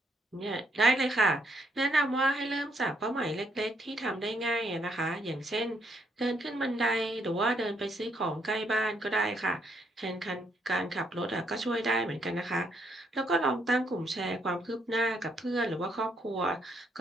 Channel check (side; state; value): both; normal; correlation 0.73